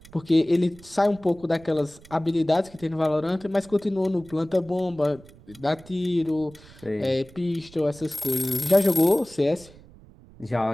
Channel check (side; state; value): right; noise; rumble, 23 dB below the sound